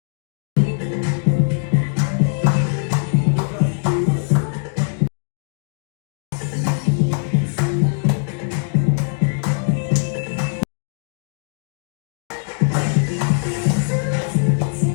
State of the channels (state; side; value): silent; right; digital silence